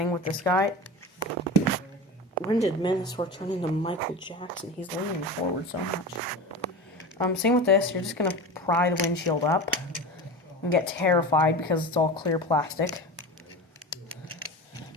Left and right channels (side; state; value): both; normal; correlation 0.29